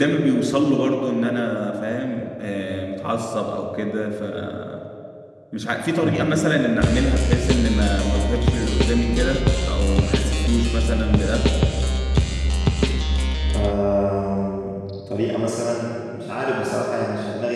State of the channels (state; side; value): identical; both; correlation 1.00